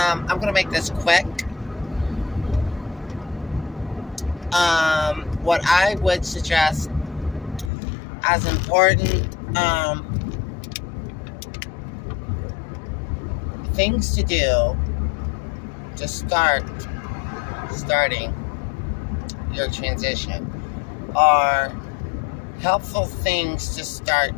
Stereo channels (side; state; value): right; drops out; at 7.7 s